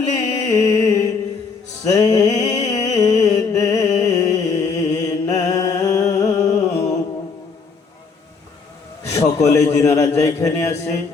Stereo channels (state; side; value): quieter; right; 5.0 dB